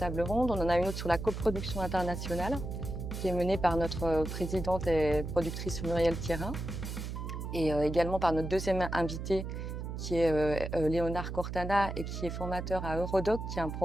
ronde. On en a une autre sur la coproduction internationale qui est menée par notre présidente et productrice Muriel Thierin, et également par notre deuxième invité qui est Léonard Cortana et qui est formateur à Eurodoc, qui est un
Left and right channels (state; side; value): noise; right; hum, 6 dB below the sound